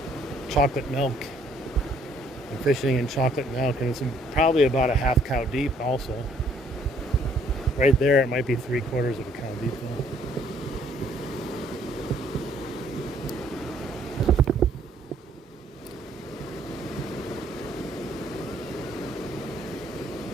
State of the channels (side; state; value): both; normal; correlation 0.63